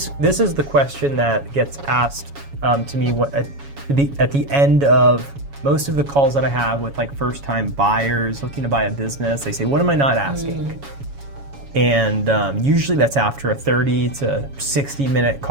is the question that gets asked to me at the end of most of the calls that I have with like first-time buyers looking to buy a business. They say, "What am I not asking?" And usually that's after a 30 to 60-minute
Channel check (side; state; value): left; late; 7.2 ms